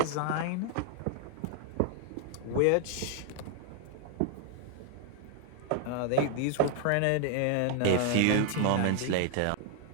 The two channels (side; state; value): both; different; correlation 0.00